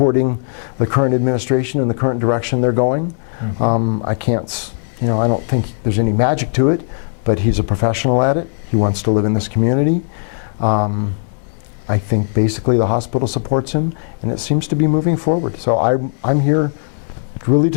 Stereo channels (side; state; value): right; silent; digital silence